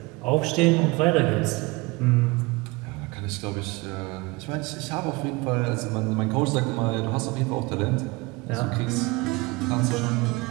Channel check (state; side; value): quieter; left; 23.9 dB